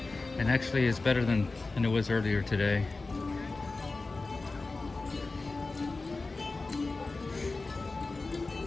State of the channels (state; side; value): quieter; right; 3.6 dB